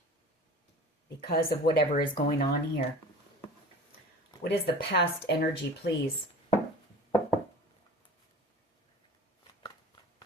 because of whatever is going on here. What is the past energy, please?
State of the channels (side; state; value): both; normal; correlation 0.40